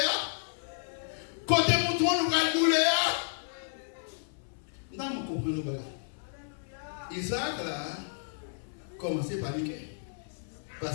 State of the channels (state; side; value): silent; right; 56 dB below the other